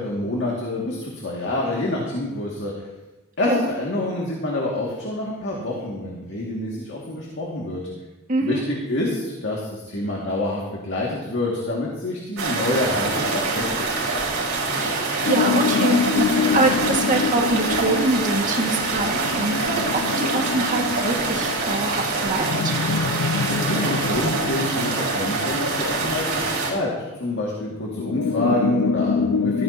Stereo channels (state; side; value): normal; both; correlation 0.19